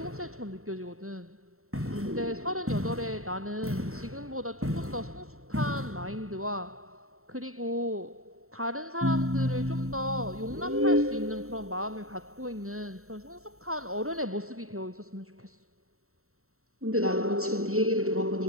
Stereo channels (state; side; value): late; left; 0.63 ms